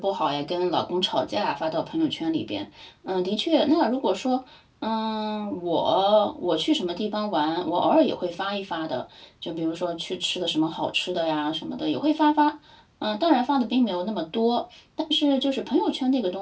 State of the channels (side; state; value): both; identical; correlation 1.00